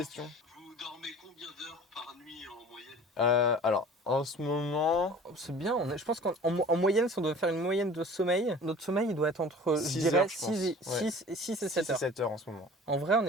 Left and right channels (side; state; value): both; normal; correlation 0.43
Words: Vous dormez combien d'heures par nuit en moyenne? Alors, en ce moment, C'est bien, je pense qu'en moyenne, si on doit faire une moyenne de sommeil, notre sommeil il doit être entre, 6 heures, je pense. 6 et 7 c'est heures. 7 heures en ce moment. En vrai, on